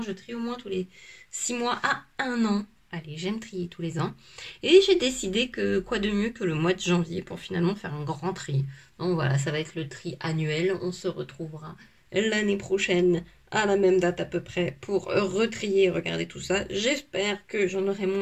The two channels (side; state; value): both; identical; correlation 1.00